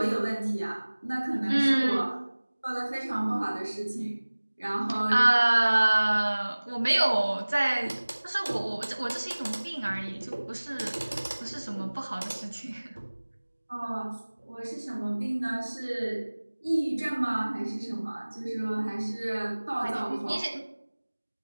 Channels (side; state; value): both; inverted; correlation -1.00